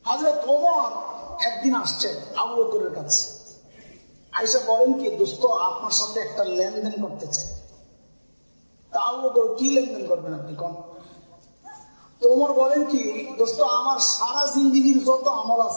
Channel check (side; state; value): both; inverted; correlation -1.00